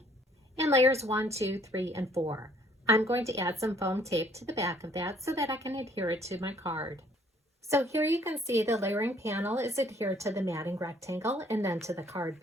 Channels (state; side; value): normal; both; correlation 0.61